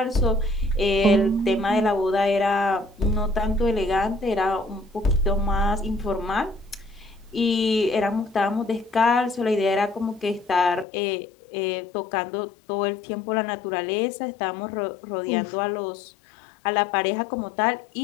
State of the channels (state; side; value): drops out; right; at 10.9 s